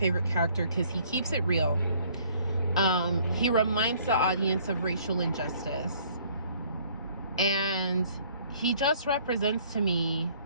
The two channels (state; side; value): inverted; both; correlation -0.59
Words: character because he keeps it real. He reminds the audience of racial injustice. And he just represents to me